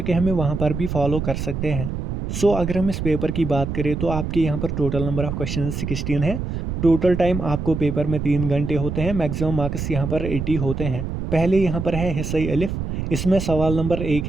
हमें वहाँ पर भी फॉलो कर सकते हैं। अगर हम इस पेपर की बात करें तो आपके यहाँ पर टोटल नंबर ऑफ क्वेश्चन 16 है। टोटल टाइम आपको पेपर में 3 घंटे होते हैं। मैक्सिमम मार्क्स यहाँ पर 80 होते हैं। पहले यहाँ पर है हिस्सा अलिफ। इसमें सवाल नंबर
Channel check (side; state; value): right; noise; rumble, 4 dB below the sound